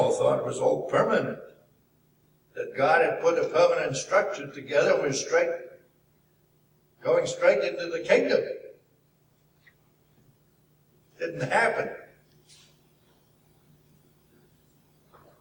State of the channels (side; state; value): both; identical; correlation 1.00